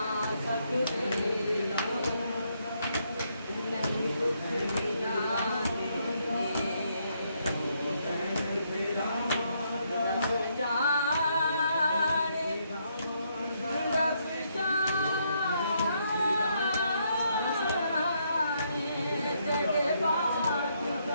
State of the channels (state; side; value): inverted; both; correlation -0.75